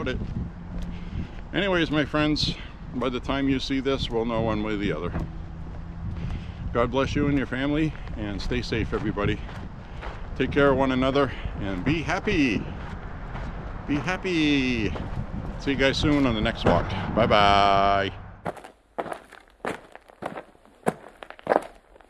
it. Anyways, my friends, by the time you see this, we'll know one way or the other. God bless you and your family, and stay safe, everybody. Take care of one another, and be happy. Be happy. See you guys soon on the next walk. Bye-bye.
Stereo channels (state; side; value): identical; both; correlation 1.00